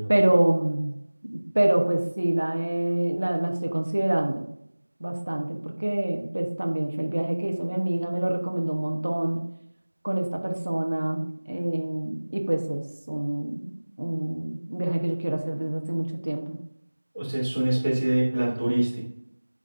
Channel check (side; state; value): both; inverted; correlation -1.00